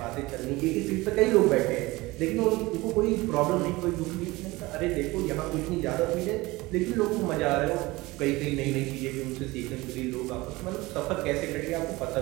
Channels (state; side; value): quieter; left; 21.1 dB